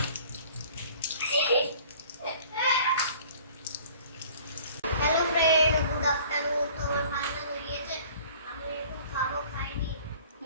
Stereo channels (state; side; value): inverted; both; correlation -0.51